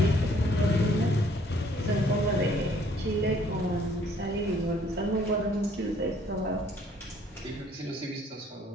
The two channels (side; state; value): both; normal; correlation 0.61